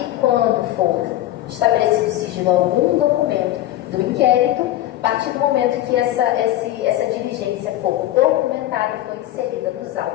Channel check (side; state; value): right; quieter; 14.2 dB